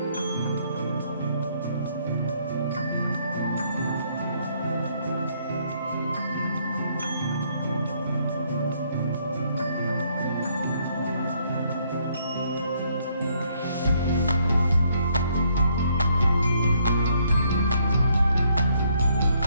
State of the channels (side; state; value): both; inverted; correlation -0.69